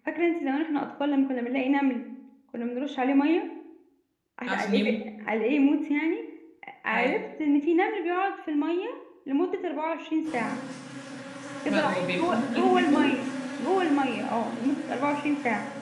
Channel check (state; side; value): identical; both; correlation 1.00